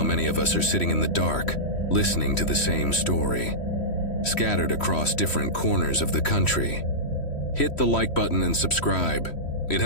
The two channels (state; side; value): late; right; 3.1 ms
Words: many of us are sitting in the dark, listening to the same story, scattered across different corners of the country. Hit the like button and subscribe. It